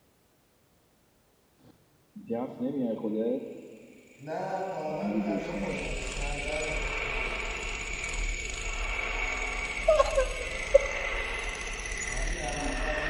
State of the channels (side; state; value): both; identical; correlation 1.00